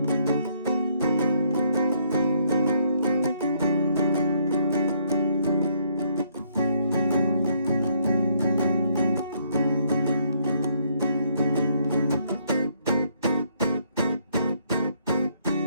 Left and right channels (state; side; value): inverted; both; correlation -0.69